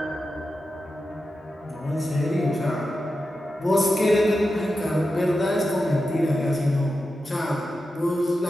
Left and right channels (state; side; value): normal; both; correlation 0.90